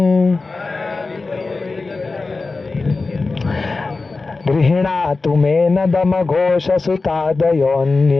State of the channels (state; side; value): quieter; right; 3.8 dB